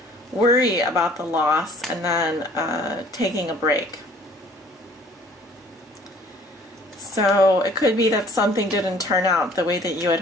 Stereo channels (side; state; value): both; normal; correlation 0.54